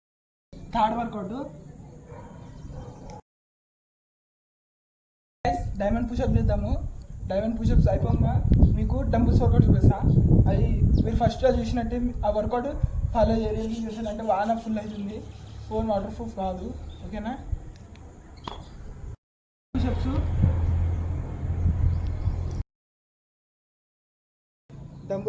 Third workout diamond pushup చేద్దాము. డైమండ్ పుషప్స్ అయిపోగా మీకు డంబుల్స్ వర్కౌట్ చూపిస్తా. అది మీరు ఫస్ట్లో చూసినట్టే ఆ వర్కౌట్ ఫాలో చేయాలి. చేసానంటే వాన ఫుల్ అవుతుంది. ఫోన్ వాటర్ ప్రూఫ్ కాదు. ఓకేనా? పుషప్స్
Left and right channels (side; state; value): both; identical; correlation 1.00